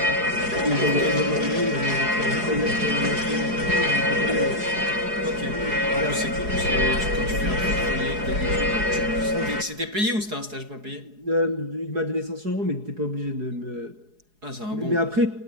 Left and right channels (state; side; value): late; left; 4.8 ms